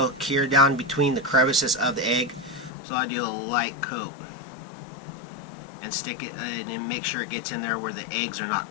cure down between the crevices of the egg, so I do a light coat and stick it and make sure it gets in there where the eggs are not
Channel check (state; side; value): drops out; right; at 2.7 s